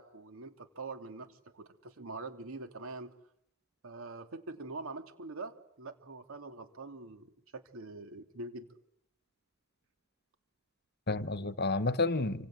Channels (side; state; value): both; normal; correlation -0.04